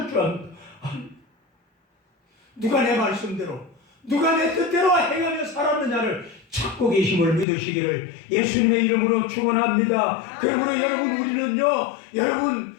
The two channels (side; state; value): right; drops out; at 7.5 s